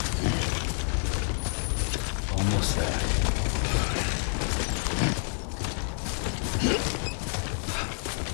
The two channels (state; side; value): silent; right; 59 dB below the other